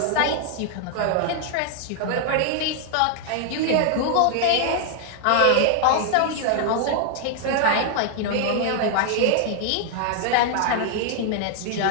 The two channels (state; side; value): different; both; correlation 0.00